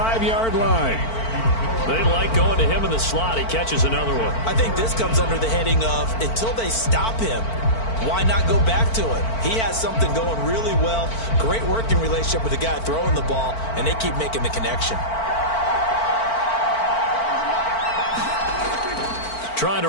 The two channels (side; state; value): right; late; 4.5 ms